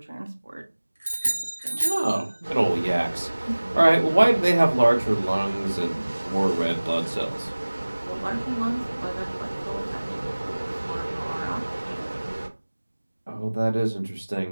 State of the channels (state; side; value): inverted; both; correlation -1.00